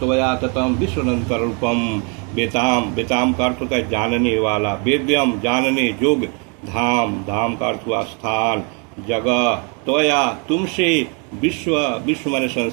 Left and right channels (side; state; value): left; quieter; 35.5 dB